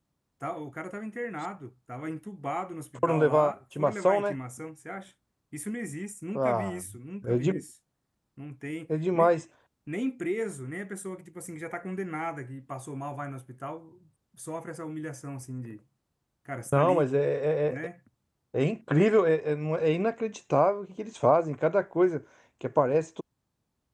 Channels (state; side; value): identical; both; correlation 1.00